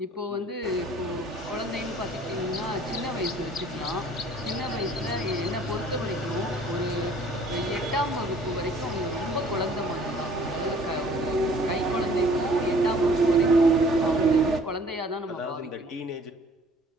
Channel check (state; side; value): normal; both; correlation 0.54